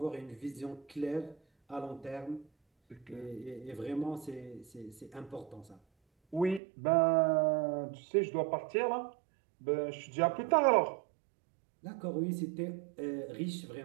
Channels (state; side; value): drops out; left; at 6.6 s